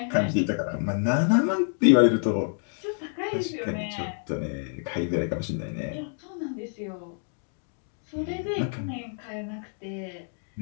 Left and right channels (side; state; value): right; silent; 60 dB below the other